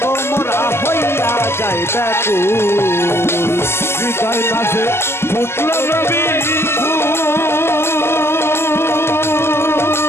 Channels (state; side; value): late; right; 0.12 ms